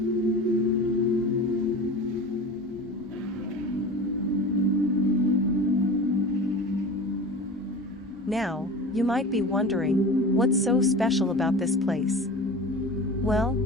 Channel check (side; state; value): both; normal; correlation 0.34